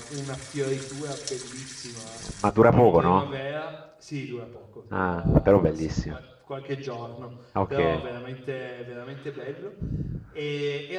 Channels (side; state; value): both; identical; correlation 1.00